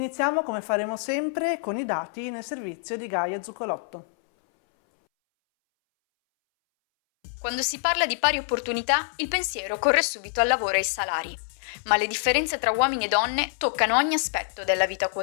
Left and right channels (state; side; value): silent; right; 61 dB below the other